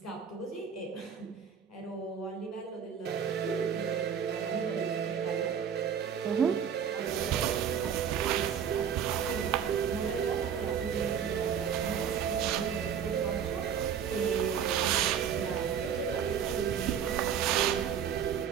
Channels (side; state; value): left; quieter; 7.9 dB